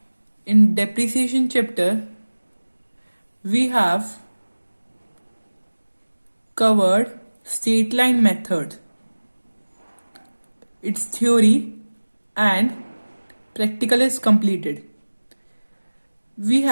in depreciation chapter, we have covered straight line method, its theory and practical is completed. We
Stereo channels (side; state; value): both; inverted; correlation -1.00